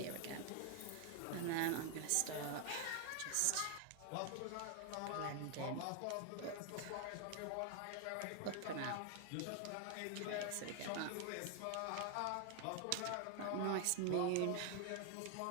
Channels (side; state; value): both; different; correlation 0.00